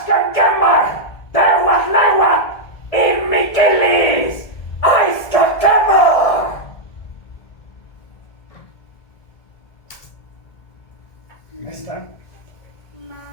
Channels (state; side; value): late; right; 1.7 ms